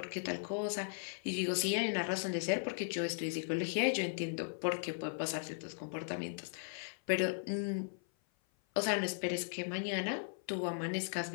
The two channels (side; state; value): right; silent; 53 dB below the other